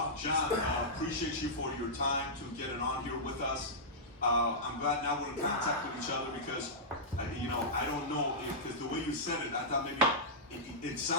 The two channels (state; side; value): normal; both; correlation -0.12